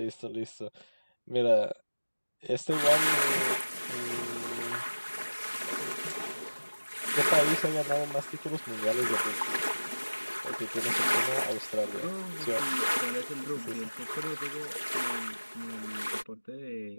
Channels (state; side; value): inverted; both; correlation -1.00